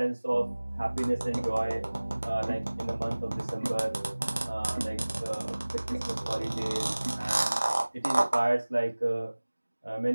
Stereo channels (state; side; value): inverted; both; correlation -1.00